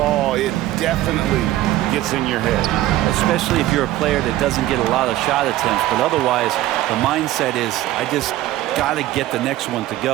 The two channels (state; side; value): quieter; left; 15.0 dB